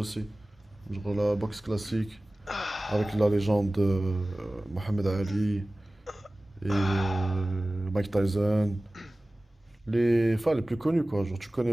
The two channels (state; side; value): normal; both; correlation 0.97